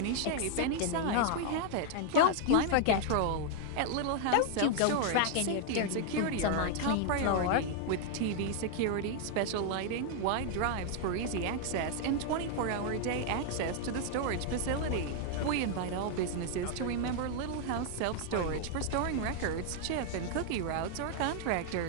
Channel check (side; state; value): both; different; correlation 0.00